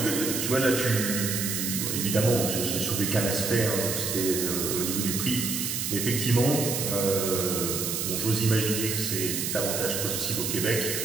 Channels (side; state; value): right; noise; hiss, 1 dB below the sound